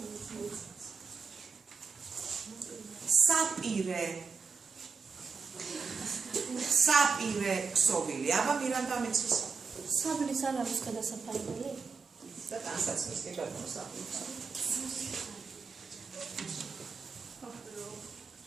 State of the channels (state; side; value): quieter; left; 5.3 dB